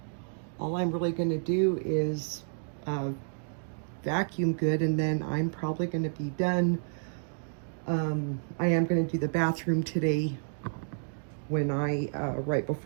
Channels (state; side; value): silent; left; digital silence